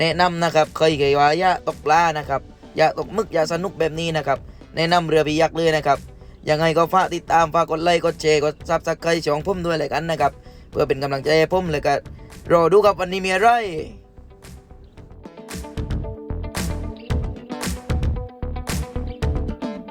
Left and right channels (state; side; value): identical; both; correlation 1.00